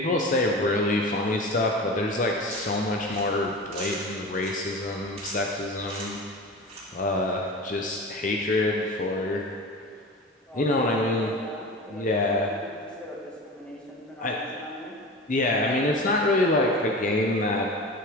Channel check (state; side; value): normal; both; correlation 0.32